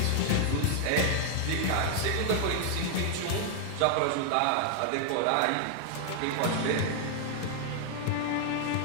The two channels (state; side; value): different; both; correlation 0.00